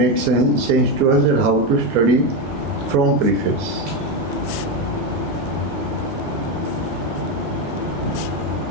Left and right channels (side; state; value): both; normal; correlation 0.11